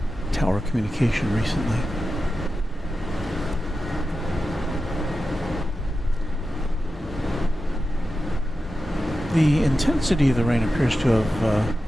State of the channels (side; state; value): both; normal; correlation 0.92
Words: tower communication recently. The intensity of the rain appears to have